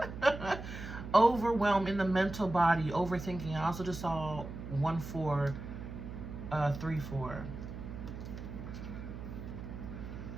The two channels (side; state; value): right; noise; hum, 9 dB below the sound